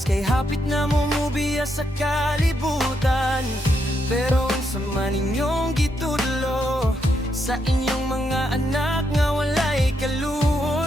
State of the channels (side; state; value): both; normal; correlation 0.80